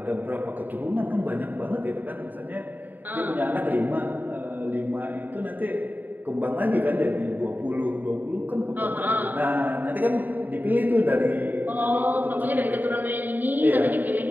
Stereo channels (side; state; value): left; late; 0.088 ms